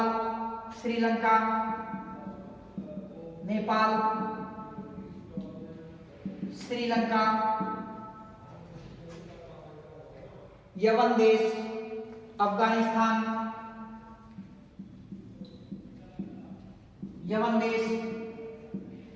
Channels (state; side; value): identical; both; correlation 1.00